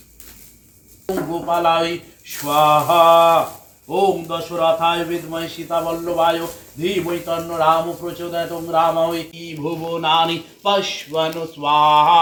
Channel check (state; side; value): identical; both; correlation 1.00